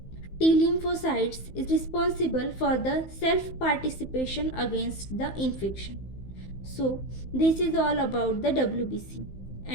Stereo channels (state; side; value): late; right; 15 ms